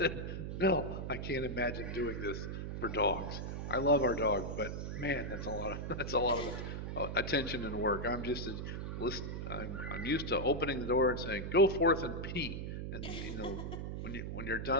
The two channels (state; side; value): noise; right; hum, 5 dB below the sound